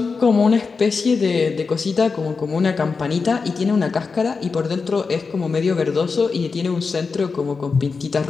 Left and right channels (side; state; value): right; quieter; 4.8 dB